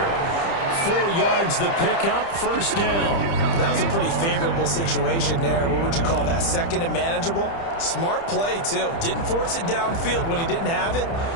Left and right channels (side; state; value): right; late; 30 ms